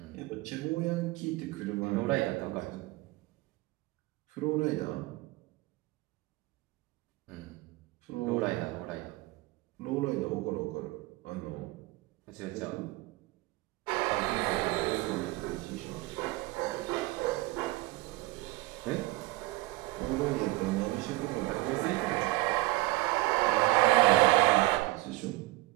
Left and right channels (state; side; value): quieter; left; 20.1 dB